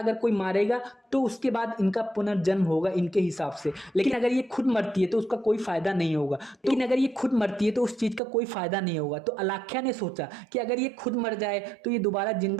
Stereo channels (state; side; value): drops out; left; at 8.2 s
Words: कोई मारेगा तो उसके बाद इनका पुनर्जन्म होगा इनके हिसाब से। लेकिन अगर ये खुद मरती है तो उसका कोई फायदा नहीं होगा। लेकिन अगर ये खुद मरती है तो उस चीज का कोई फायदा नहीं होगा। तो अलाख्या ने सोचा कि अगर ये खुद मर जाए तो ये दोबारा